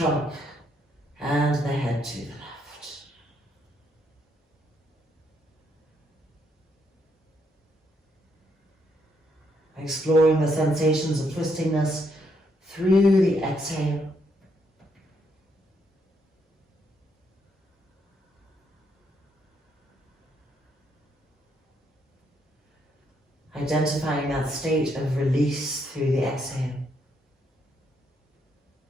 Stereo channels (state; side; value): normal; both; correlation 0.75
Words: and the head to the left. Exploring the sensations of twistingness through the exhale. Identifying that state of release through the exhale.